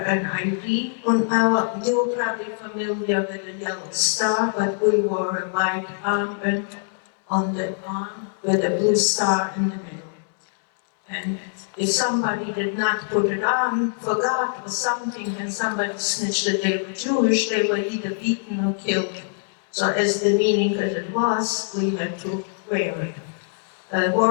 an ID on our, you were probably familiar with the yellow star, but we wore a white armband on the arm with a blue star in the middle. And if somebody did not put it on, forgot or something, and somebody snitched that they were Jewish, they were either beaten or killed. So as demeaning as it was, we had to wear it.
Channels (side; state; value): right; silent; 63 dB below the other